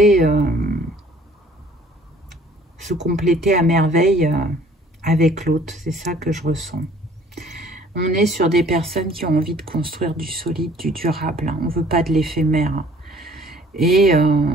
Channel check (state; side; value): normal; both; correlation 0.55